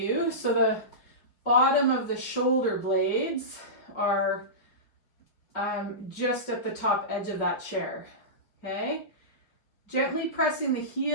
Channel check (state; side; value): late; right; 5.3 ms